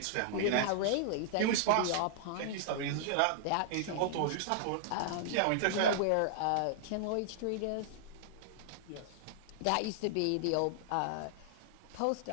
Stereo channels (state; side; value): different; both; correlation -0.01